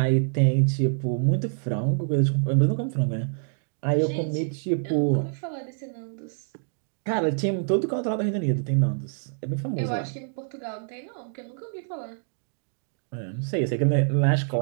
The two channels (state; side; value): silent; left; digital silence